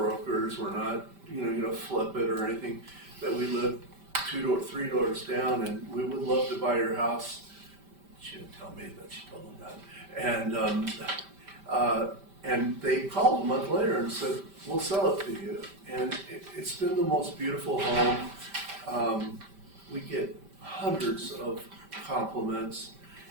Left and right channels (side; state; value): left; late; 5.1 ms